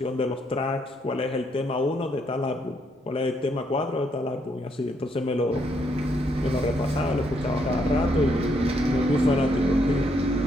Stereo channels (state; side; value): normal; both; correlation 0.74